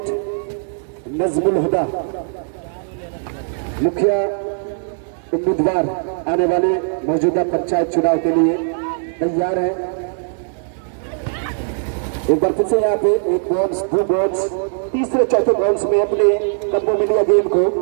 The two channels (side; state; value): left; silent; digital silence